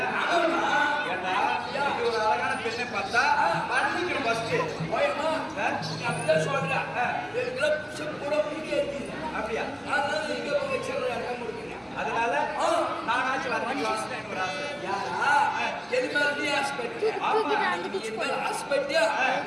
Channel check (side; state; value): both; identical; correlation 1.00